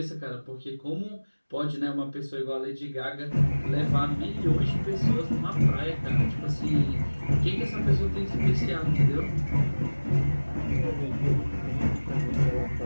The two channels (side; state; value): both; inverted; correlation -1.00